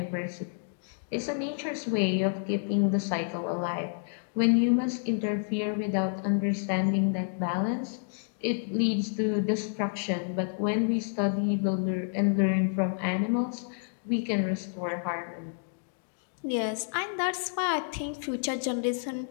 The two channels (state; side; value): silent; right; digital silence